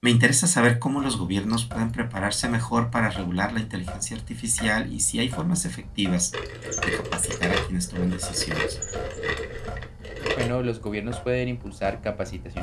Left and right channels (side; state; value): both; identical; correlation 1.00